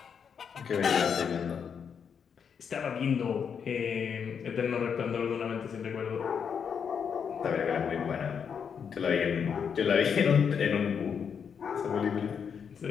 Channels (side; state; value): right; quieter; 7.0 dB